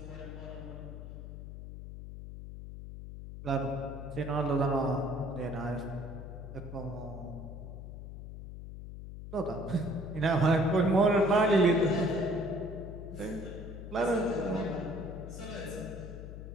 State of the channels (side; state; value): left; noise; hum, 10 dB below the sound